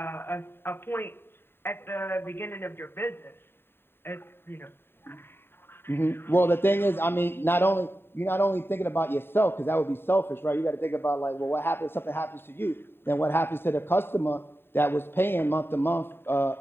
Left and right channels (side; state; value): right; late; 0.11 ms